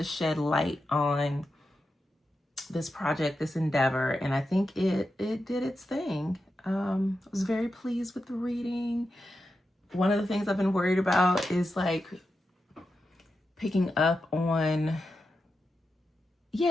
shed light on this project, this endeavor. And I think it did its thing. I was very pleased with the reading. One of the things I've been worried about is like picking up on,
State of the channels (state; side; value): normal; both; correlation 0.89